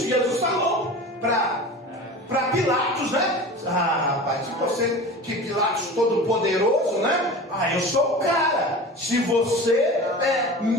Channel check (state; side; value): normal; both; correlation 0.35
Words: Jesus falou para Pilatos, né? Rapaz, se você, que Pilatos todo poderoso, né? Eu sou o cara. Se você